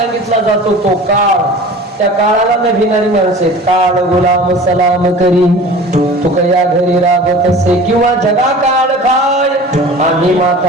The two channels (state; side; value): normal; both; correlation 0.40